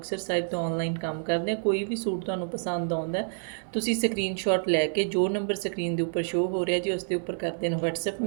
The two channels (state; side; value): silent; left; 59 dB below the other